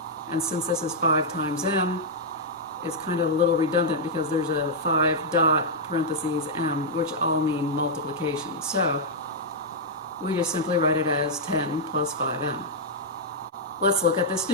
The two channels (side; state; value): both; normal; correlation -0.06